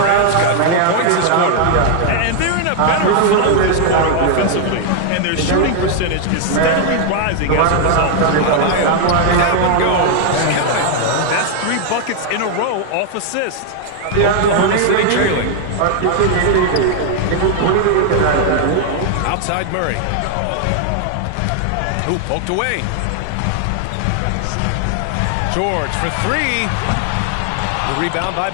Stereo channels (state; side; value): different; both; correlation 0.00